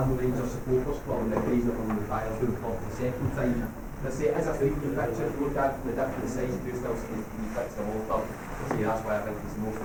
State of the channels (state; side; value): identical; both; correlation 1.00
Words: Rangers supporters club on the occasion of him retired doing for the second time. As I say, it is a 3D picture. If you look at it from the different sides, you do still see the 3D picture of Walter. So that's why I think it's the most